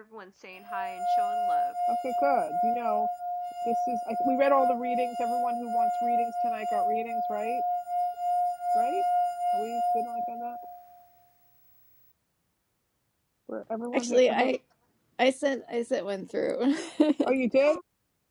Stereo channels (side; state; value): both; identical; correlation 1.00